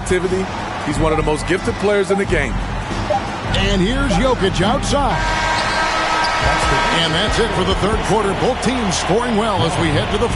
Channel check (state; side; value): identical; both; correlation 1.00